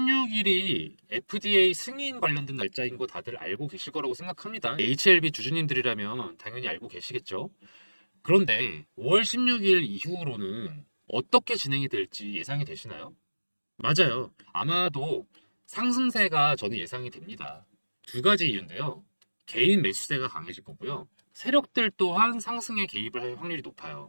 FDA 승인 관련된 날짜인 거 다들 알고 계실 거라고 생각합니다. HLB 주주님들이라면 당연히 알고 계시겠죠. 그런데 5월 16일 이후로는 어떻게 진행이 될지 예상이 되시나요? 맞아요. 아마도 상승세가 저는 예상이 됩니다. 두 가지 이유인데요. 개인 매수세가 강해질 거고요. 세력들 또한 상승에 개입을 할 확률이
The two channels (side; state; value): both; inverted; correlation -1.00